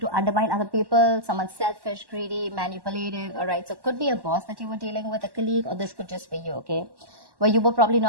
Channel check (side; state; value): left; late; 1.1 ms